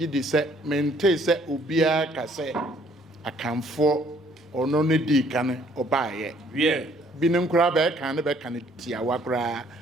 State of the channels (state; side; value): normal; both; correlation 0.62